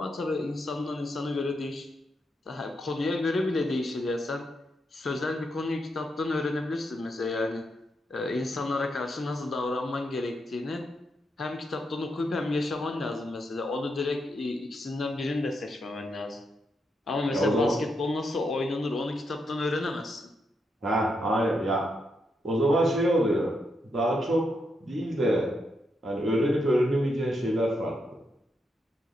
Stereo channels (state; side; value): normal; both; correlation 0.81